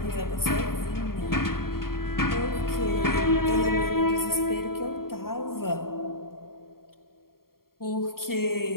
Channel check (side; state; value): right; late; 0.93 ms